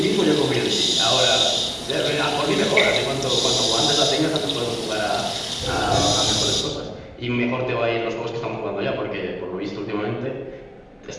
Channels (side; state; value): both; identical; correlation 1.00